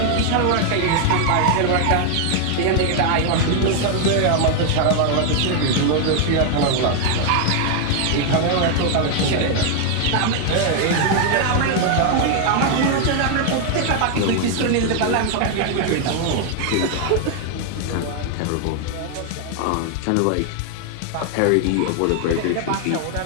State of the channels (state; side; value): different; both; correlation 0.00